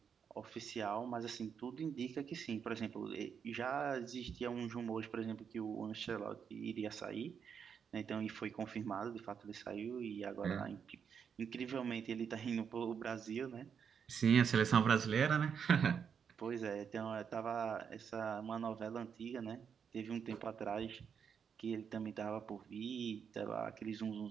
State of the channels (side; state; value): left; quieter; 7.1 dB